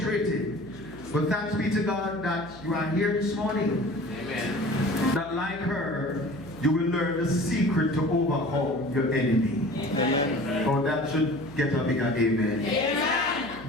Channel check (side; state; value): right; noise; hum, 18 dB below the sound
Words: But thanks be to God that you are here this morning. Amen. That like her, you will learn the secret to overcome your enemy. Amen. Oh, that should get a bigger amen.